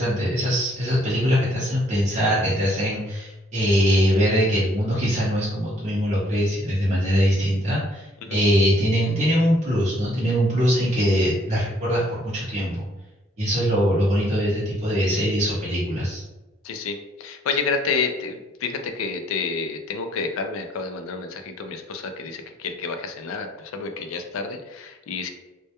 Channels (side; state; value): both; normal; correlation 0.65